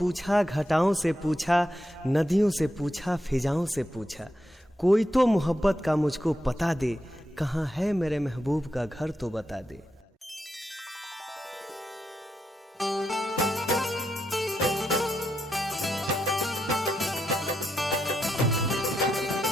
घटाओं से पूछा, नदियों से पूछा, फिजाओं से पूछा। कोई तो मोहब्बत का मुझको पता दे, कहाँ है मेरे महबूब का घर तो बता दे।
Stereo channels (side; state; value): both; normal; correlation 0.84